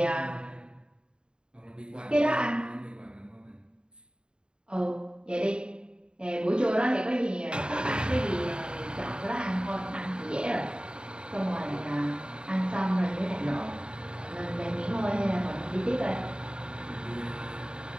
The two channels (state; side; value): late; left; 0.050 ms